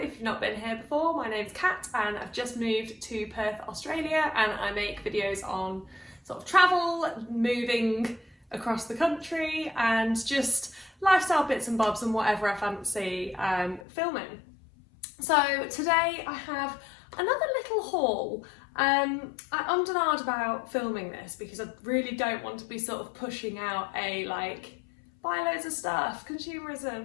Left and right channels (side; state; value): right; drops out; at 13.9 s